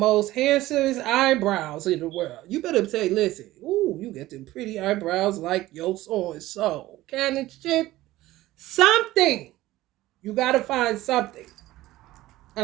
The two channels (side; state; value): left; quieter; 16.6 dB